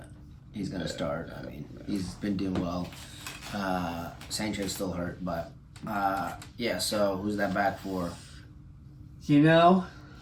start. I mean, he's been doing well. Sancho's still hurt, but so who's that back for? You know,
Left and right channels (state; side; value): identical; both; correlation 1.00